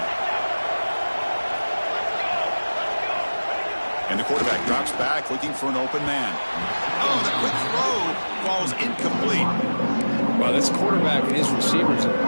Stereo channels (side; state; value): both; inverted; correlation -1.00